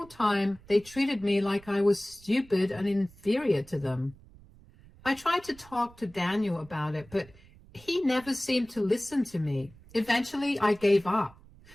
time they treated me like I was stupid and inferior to them. I tried to talk to Daniel about it, but he never seemed to listen to me. Eventually, I gave up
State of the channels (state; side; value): noise; right; rumble, 24 dB below the sound